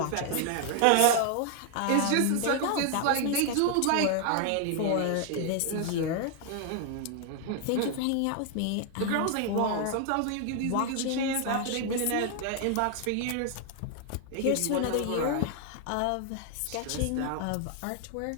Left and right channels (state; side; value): different; both; correlation 0.00